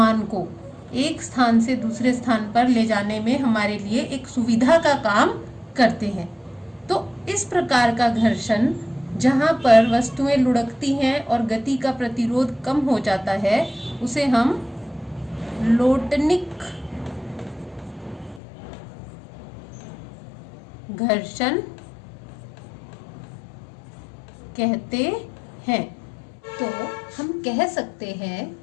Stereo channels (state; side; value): drops out; right; at 18.4 s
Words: को एक स्थान से दूसरे स्थान पर ले जाने में हमारे लिए एक सुविधा का काम करते हैं। तो इस प्रकार का घर्षण जहां पर वस्तुएं लुढ़कती हैं और गति का प्रतिरोध कम हो जाता है, उसे हम लोटनिक घर्षण कहते हैं। तो हम कह सकते हैं